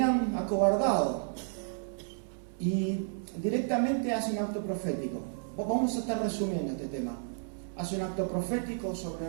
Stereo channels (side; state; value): left; silent; 57 dB below the other